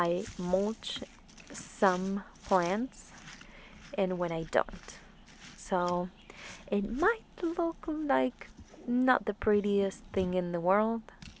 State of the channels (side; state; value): both; identical; correlation 1.00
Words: mulch some plants and when I don't. So it might look like not the prettiest thing in the world,